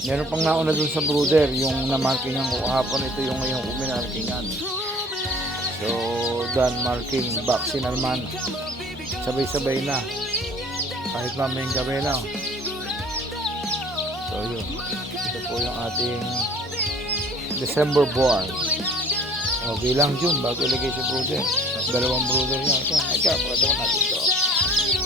Meron pang nauna dun sa brother, yung namarkingan ko kahapon, ito yung ngayong uminarkingan. So, done marking, vaccine naman. Sabay-sabay na. Kahit mamayang gabi na. So, yun. Ito po yung ating December born. Okay lang June, bago ilagay si brother. Dalawang brother niya. Ika, pakatawa natin ito.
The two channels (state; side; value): normal; both; correlation 0.51